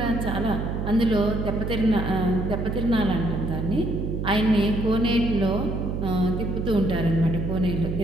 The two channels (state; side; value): noise; right; hum, 3 dB below the sound